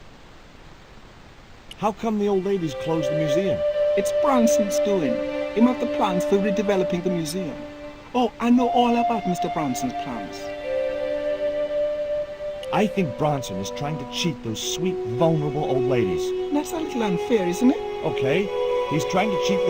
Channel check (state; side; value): identical; both; correlation 1.00